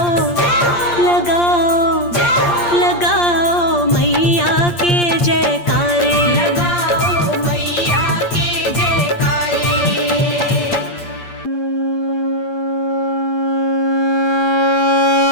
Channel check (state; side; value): late; right; 8.6 ms